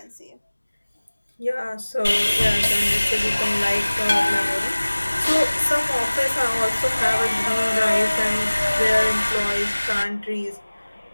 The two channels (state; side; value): inverted; both; correlation -1.00